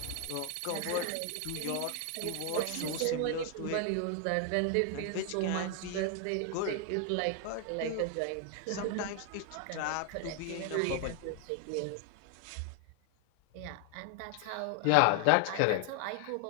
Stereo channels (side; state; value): both; different; correlation 0.00